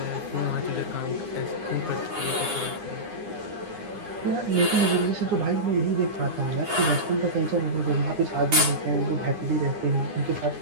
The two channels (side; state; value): left; late; 9.8 ms